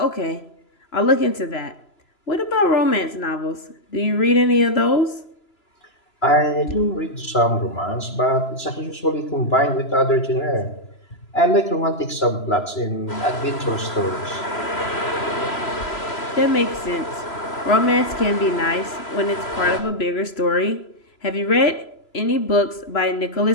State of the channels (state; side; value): late; right; 3.0 ms